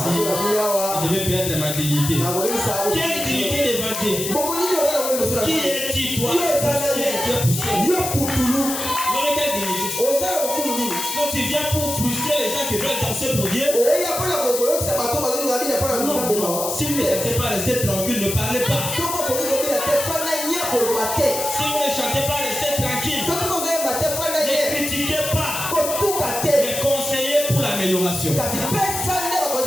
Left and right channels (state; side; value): noise; left; hiss, 4 dB below the sound